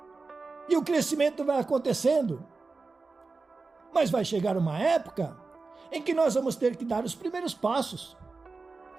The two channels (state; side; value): quieter; left; 4.0 dB